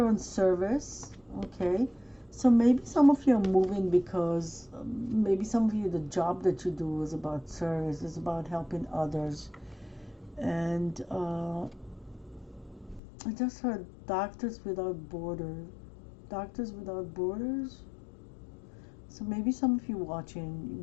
on service. Okay. So maybe some of you are moving because maybe some of you, the job that you do is about service, is about helping others. And I just heard Doctors Without Borders. Doctors Without Borders. So maybe some of you watching, you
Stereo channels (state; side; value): drops out; right; at 13.0 s